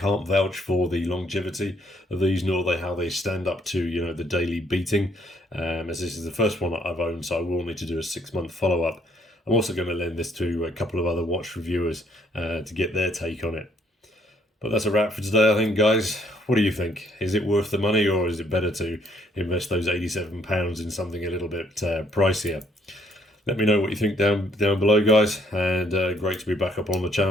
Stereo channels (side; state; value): both; normal; correlation 0.67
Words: vouch for the longevity of these, nor how they stand up to the daily beating, as this is the first one that I've owned, so I will need to do a 6-month follow-up. I'm also going to lend this to a couple of other watch reviewers to get their take on it. But that's a wrap for today, I think, guys. What do you think? Is it worth the money, or is it better to invest those £87 in something a little bit pricier? Let me know what you think down below, guys. And great to be back up on the